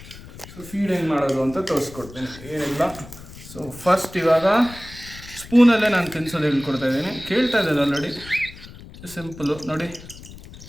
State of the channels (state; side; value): noise; left; rumble, 17 dB below the sound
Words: ಸೊ ಫೀಡ್ ಹೆಂಗೆ ಮಾಡೋದು ಅಂತ ತೋರಿಸ್ಕೊಡ್ತೀನಿ. ಏನಿಲ್ಲ, ಸೊ ಫಸ್ಟ್ ಇವಾಗ ಸ್ಪೂನಲ್ಲೇ ನಾನು ತಿನ್ಸೋದು ಹೇಳ್ಕೊಡ್ತಾ ಇದ್ದೀನಿ. ಕೇಳ್ತಾ ಇದ್ದಾರೆ ಆಲ್ರೆಡಿ, ಸಿಂಪಲು ನೋಡಿ.